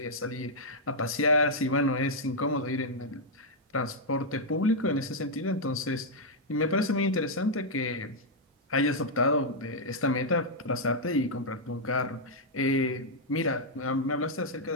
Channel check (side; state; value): both; normal; correlation -0.05